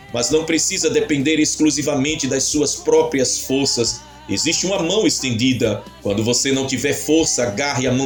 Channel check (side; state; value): both; identical; correlation 1.00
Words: mas não precisa depender exclusivamente das suas próprias forças. Existe uma mão estendida. Quando você não tiver força, agarre a